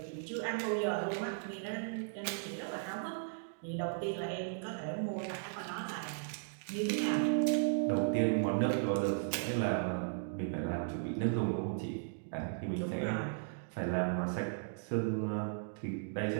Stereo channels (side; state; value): left; silent; digital silence